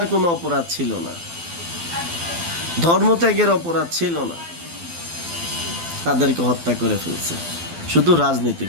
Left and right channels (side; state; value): left; late; 12 ms